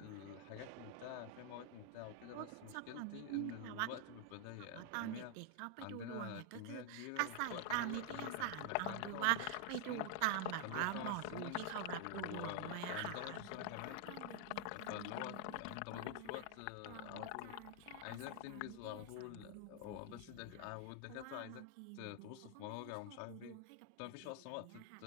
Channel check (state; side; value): different; both; correlation 0.00